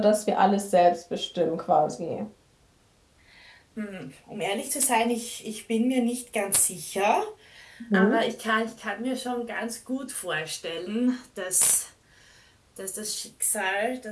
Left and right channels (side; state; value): both; identical; correlation 1.00